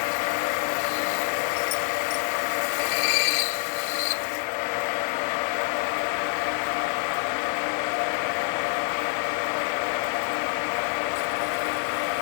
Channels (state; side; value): silent; right; 58 dB below the other